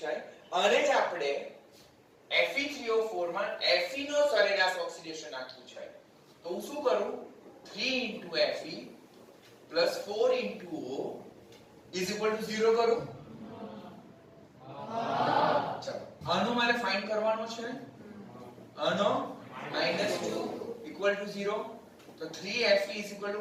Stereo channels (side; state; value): both; identical; correlation 1.00